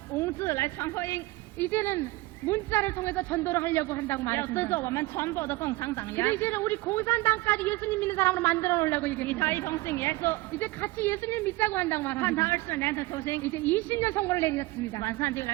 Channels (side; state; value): left; quieter; 20.3 dB